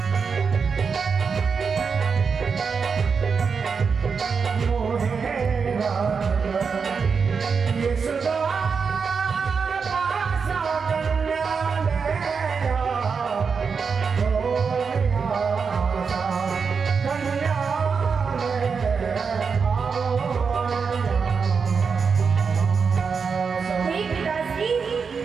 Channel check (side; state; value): left; quieter; 5.6 dB